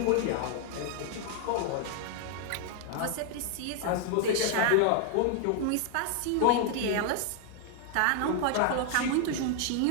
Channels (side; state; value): both; different; correlation 0.00